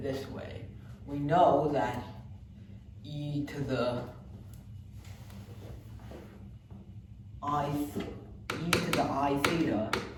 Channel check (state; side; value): identical; both; correlation 1.00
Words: this way. We know that e to the I theta